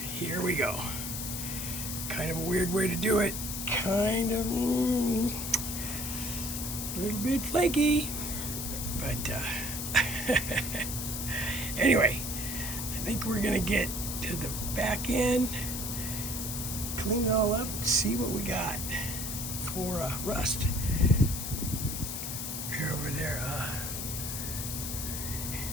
here we go. Kind of a weird way to do it. Kind of a little bit flaky, but anyway, I think we're gonna get to the back end, clean it all up, and see what we got for rust. Here over there.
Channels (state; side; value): noise; left; hiss, 4 dB below the sound